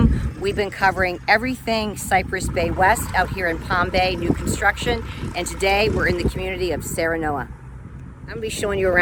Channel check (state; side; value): identical; both; correlation 1.00